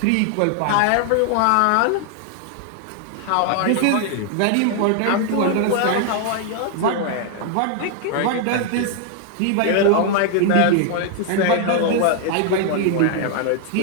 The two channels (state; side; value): different; both; correlation 0.00